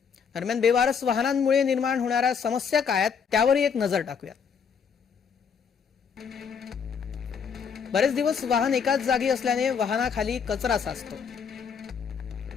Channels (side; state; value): right; quieter; 6.6 dB